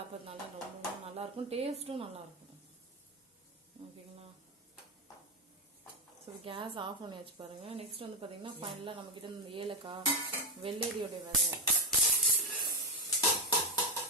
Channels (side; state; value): both; normal; correlation 0.08